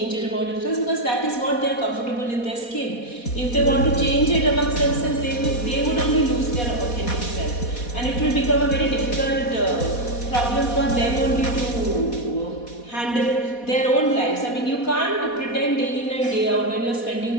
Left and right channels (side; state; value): right; late; 4.1 ms